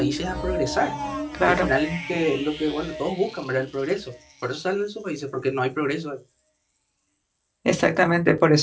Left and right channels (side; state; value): both; identical; correlation 1.00